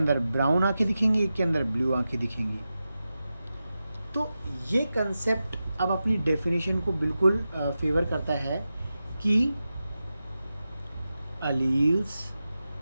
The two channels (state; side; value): inverted; both; correlation -0.92